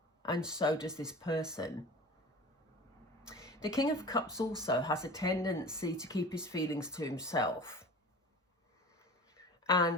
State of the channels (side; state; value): both; normal; correlation 0.38